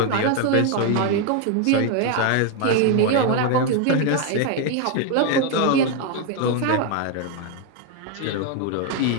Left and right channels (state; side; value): different; both; correlation 0.01